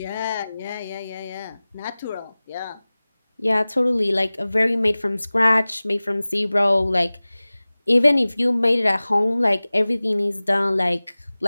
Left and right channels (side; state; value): both; inverted; correlation -0.98